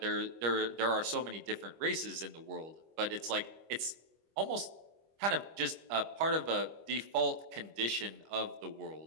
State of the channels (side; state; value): left; late; 25 ms